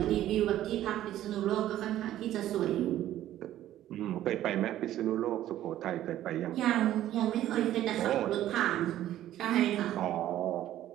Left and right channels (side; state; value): left; quieter; 13.0 dB